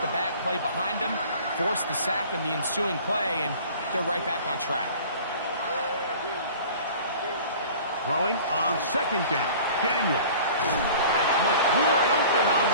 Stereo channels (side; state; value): both; inverted; correlation -0.45